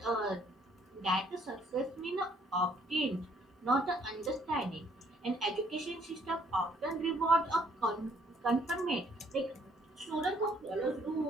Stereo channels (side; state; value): both; normal; correlation 0.64